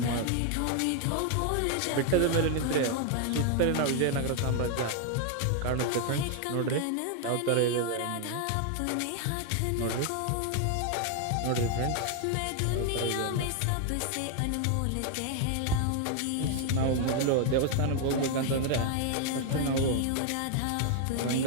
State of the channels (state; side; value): different; both; correlation 0.00